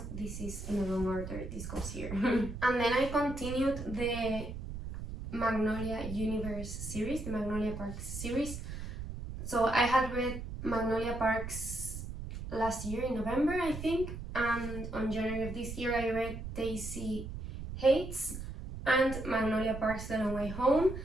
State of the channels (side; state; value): right; noise; rumble, 8 dB below the sound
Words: this is in the wrong order, this goes here. And then I continued the Magnolia Universe series, the Magnolia Parks series. So I had read Magnolia Parks last year in November, I think, and on January of this year I read Daisy Hates and Magnolia Parks The Long Way Home.